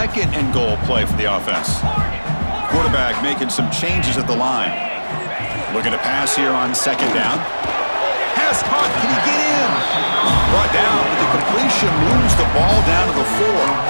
and goal play for the offense. Quarterback making some changes at the line. Looking to pass here on second down. Pass caught. Can he get in? Brought down with the completion. Moves the ball down to the 4.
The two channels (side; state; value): both; inverted; correlation -1.00